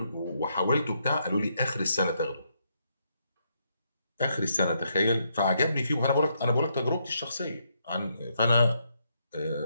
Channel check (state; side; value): inverted; both; correlation -0.77